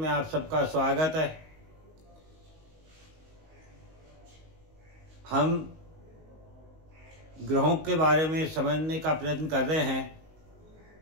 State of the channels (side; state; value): left; late; 19 ms